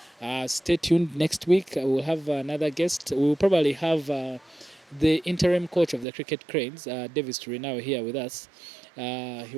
Stay tuned next week. We'll have another guest. We'll probably have the interim coach of the Cricket Cranes, Davis Turinao, here with us.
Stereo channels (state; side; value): drops out; left; at 6.1 s